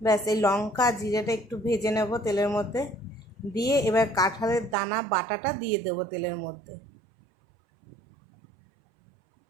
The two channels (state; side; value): drops out; left; at 4.8 s